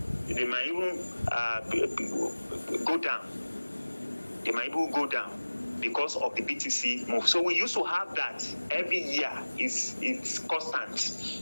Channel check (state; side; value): inverted; both; correlation -1.00